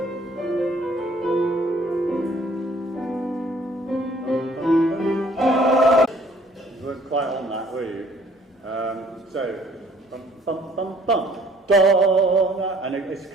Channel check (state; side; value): normal; both; correlation 0.58